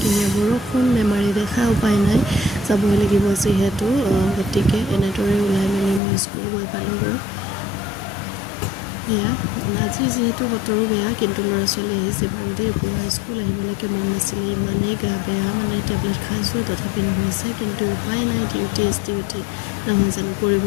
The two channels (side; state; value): right; drops out; at 6.0 s